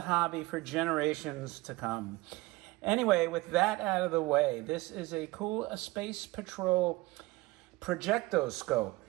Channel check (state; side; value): quieter; left; 20.9 dB